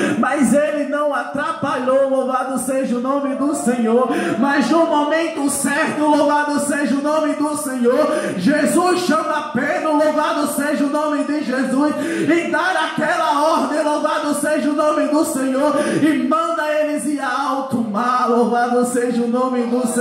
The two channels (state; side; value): identical; both; correlation 1.00